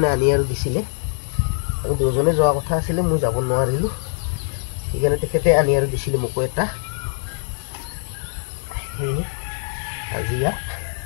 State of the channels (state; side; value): silent; right; 59 dB below the other